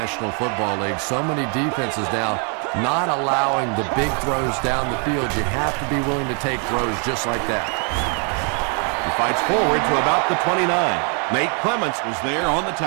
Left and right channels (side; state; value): left; quieter; 39.1 dB